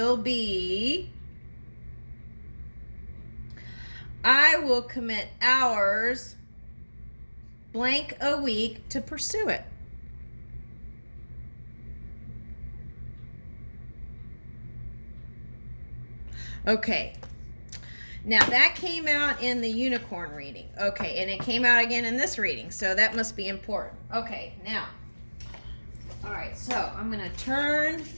be: I will commit hours blank a week to pursue it. Okay, now that came out in the unicorn reading. Okay, and it came out again in this reading, so that must be important. Okay, now, all right, so I'm going to turn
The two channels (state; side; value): inverted; both; correlation -1.00